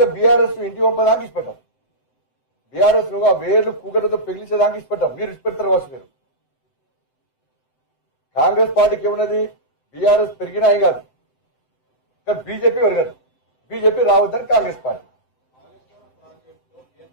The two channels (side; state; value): right; late; 7.8 ms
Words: బీఆర్ఎస్ ఇంటి పంపడానికి ఇష్టపెట్టాం, బీఆర్ఎస్ నువ్వు ఆ వేర్లు కూకటితో పెగిలించేదానికి ఇష్టపెట్టాం. మీరు ఇష్టపెడతారు కావచ్చు. మీరు కాంగ్రెస్ పార్టీకి ఏమున్నది, బీఆర్ఎస్ పెరిగినా ఏం కాదు, కానీ బీజేపీ పెరగదు. బీజేపీ రావద్దని కాంగ్రెస్ పార్టీ.